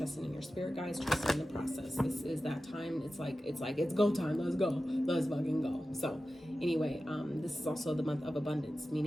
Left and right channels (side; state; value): both; normal; correlation 0.94